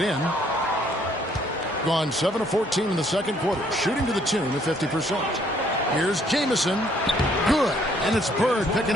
Gone 7 of 14 in the second quarter. Shooting to the tune of 50%. Here's Jamison. Good. And it's Bird picking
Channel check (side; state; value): both; normal; correlation 0.65